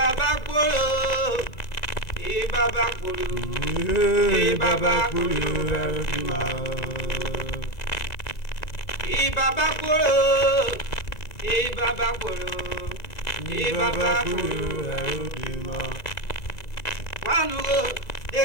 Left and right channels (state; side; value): late; right; 2.3 ms